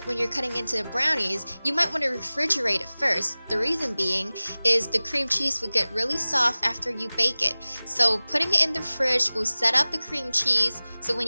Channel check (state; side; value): inverted; both; correlation -0.99